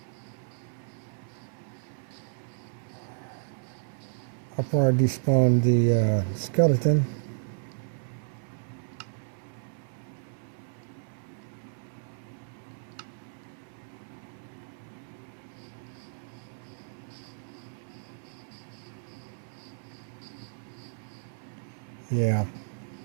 Before I despawn the skeleton. Yeah.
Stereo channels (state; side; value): silent; left; 56 dB below the other